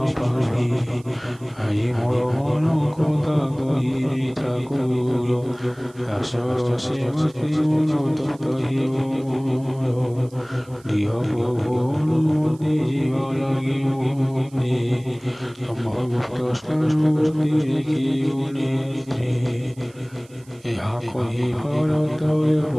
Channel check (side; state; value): right; noise; hiss, 27 dB below the sound